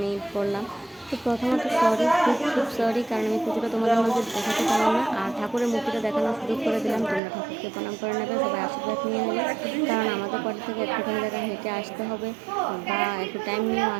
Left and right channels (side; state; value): left; drops out; at 7.2 s